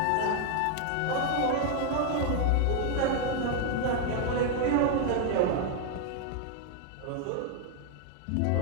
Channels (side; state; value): both; different; correlation 0.00